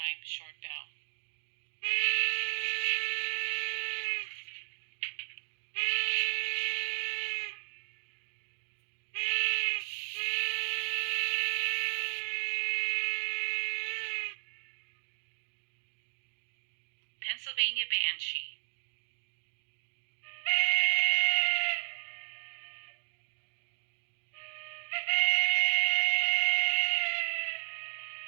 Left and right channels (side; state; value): left; silent; digital silence